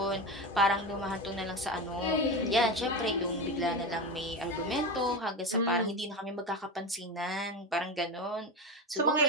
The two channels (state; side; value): normal; both; correlation 0.21